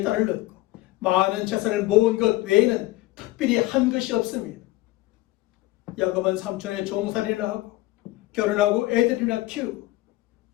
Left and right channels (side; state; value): right; quieter; 18.0 dB